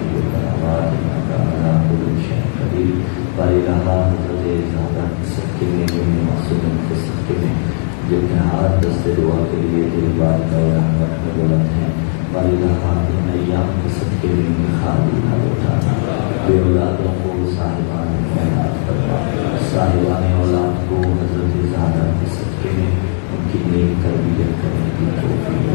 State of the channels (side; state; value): right; silent; digital silence